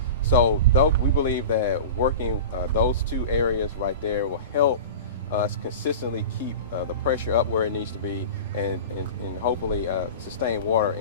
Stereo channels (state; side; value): inverted; both; correlation -0.32